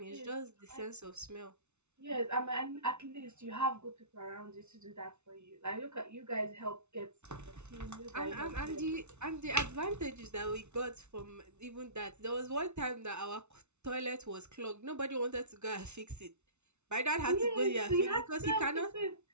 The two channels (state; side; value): late; left; 0.82 ms